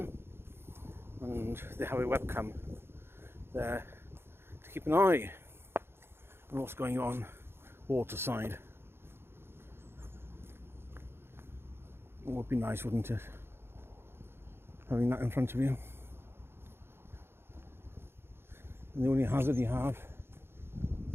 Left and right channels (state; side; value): late; left; 0.11 ms